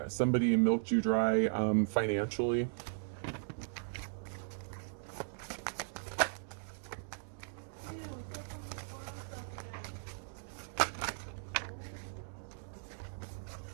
somebody milked you dry financially.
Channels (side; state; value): left; silent; digital silence